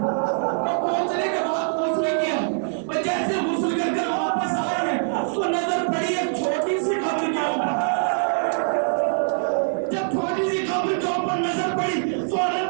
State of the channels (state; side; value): silent; left; 63 dB below the other